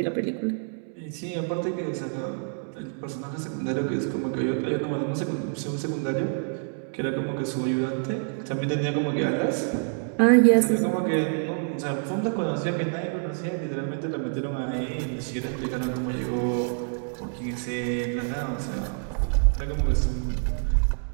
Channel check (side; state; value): left; silent; digital silence